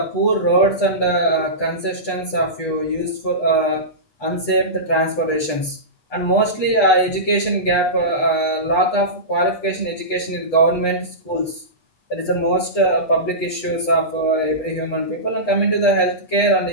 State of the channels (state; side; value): late; right; 8.3 ms